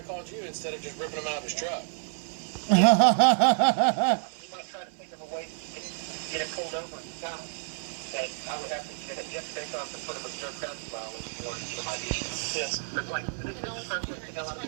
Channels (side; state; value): left; silent; 55 dB below the other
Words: called you instead of just ripping him out of his truck. You might try to think of a way to get it pulled over and stop. And I would have to get it just based off the sort of observed traffic violation in order to get my ID. Yes. But like, this is the first thing to know how to